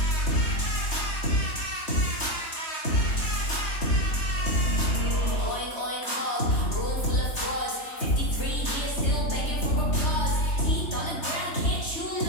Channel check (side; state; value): right; late; 3.3 ms